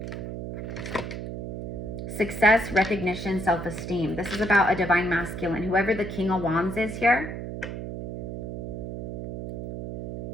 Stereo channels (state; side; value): noise; right; hum, 7 dB below the sound